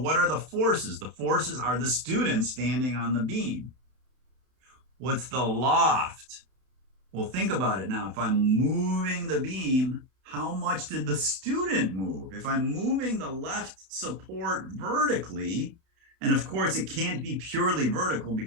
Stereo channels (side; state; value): left; late; 31 ms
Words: are the forces? The forces are the student standing on the beam. What's the loft? Well, think about it now. If I'm moving the beam, how much did the student move? If I'm moving the left support vertically, and of course it can't be purely vertical